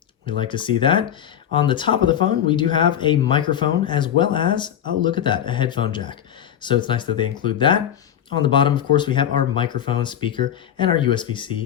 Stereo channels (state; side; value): quieter; right; 9.9 dB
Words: We like to see that. On the top of the phone, we do have a microphone as well as, oh, look at that, a headphone jack. So it's nice that they include that. On the bottom, of course, we have our microphone, speaker, and our USB-C